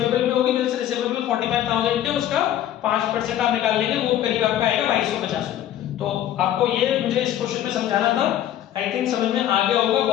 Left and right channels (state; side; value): quieter; right; 11.8 dB